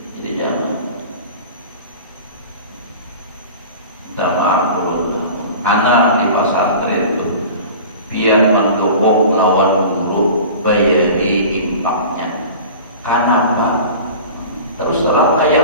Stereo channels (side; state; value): both; inverted; correlation -0.39